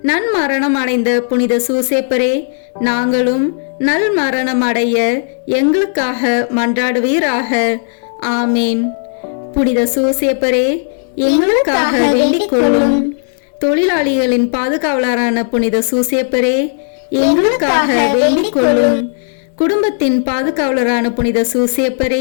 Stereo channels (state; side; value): silent; right; digital silence